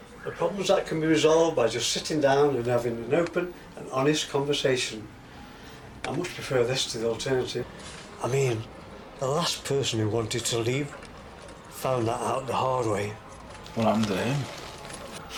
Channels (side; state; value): both; identical; correlation 1.00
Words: The problems that can be resolved by just sitting down and having an open and honest conversation. I much prefer this to the alternative. I mean, the last person who wanted to leave found that out the hard way. What happened to him?